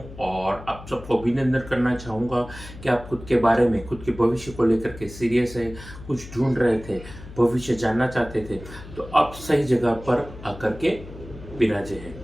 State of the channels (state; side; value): noise; left; hum, 15 dB below the sound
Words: और आप सबको अभिनंदन करना चाहूँगा कि आप खुद के बारे में खुद के भविष्य को लेकर के सीरियस है, कुछ ढूंढ रहे थे, भविष्य जानना चाहते थे, तो आप सही जगह पर आकर के विराजे हैं।